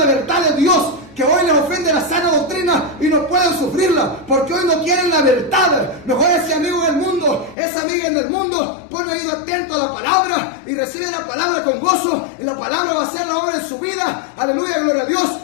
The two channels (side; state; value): right; drops out; at 7.6 s